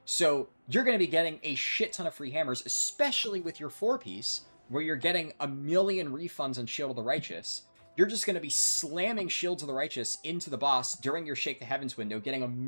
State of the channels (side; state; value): both; inverted; correlation -1.00